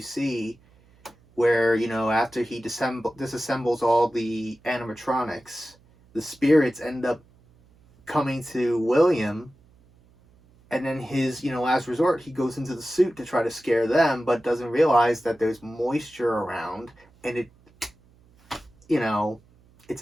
see where, after he disassembles all the animatronics, the spirits end up coming to William, and then his, last resort, he goes into the suit to try to scare them, but doesn't realize that there's moisture around, and it, it's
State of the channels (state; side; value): noise; right; hum, 30 dB below the sound